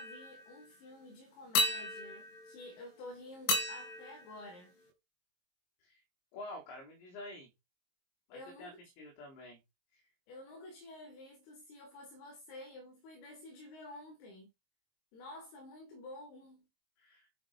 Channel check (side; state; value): right; late; 22 ms